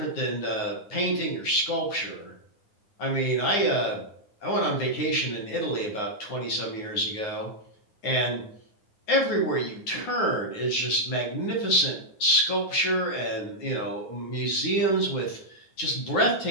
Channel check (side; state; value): right; late; 9.6 ms